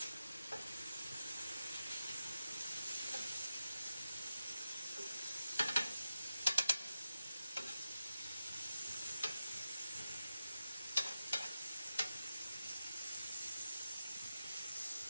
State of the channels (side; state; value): both; inverted; correlation -0.92